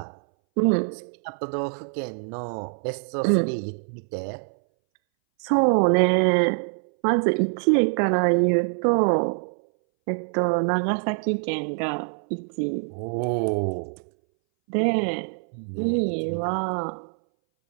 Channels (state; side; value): silent; left; 61 dB below the other